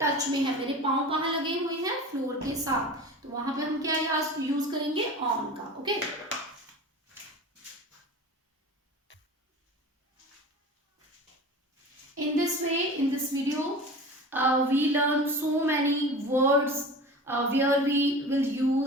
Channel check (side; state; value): both; normal; correlation 0.35